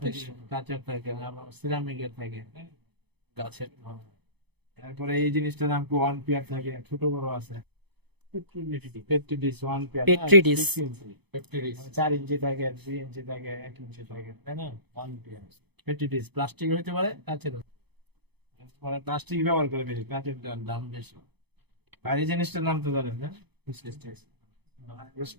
থেকে, কাঁচের থেকে, সিরামিকের থেকে, গাছের। তারপরে এই জিনিসটার নাম কি? ওয়ান পিয়ার থাকে, ছোট বড় আছে। পেট্রিডিস, ওয়ান পিয়ার, পেট্রিডিস। 4 ইঞ্চি থাকে, 2 ইঞ্চি থাকে, 1 ইঞ্চি থাকে, তাই না? One peer পেট্রিডিস। প্লাস্টিক হইতে পারে, কাঁচের মানে প্লাস্টিক ব্যবহার করে বেশি, কাঁচের দাম বেশি। আর এই জিনিসটার নাম তো জানেন না?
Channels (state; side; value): late; left; 0.98 ms